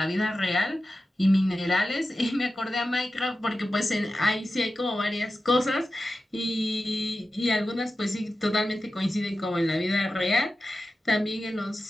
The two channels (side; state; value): both; normal; correlation 0.93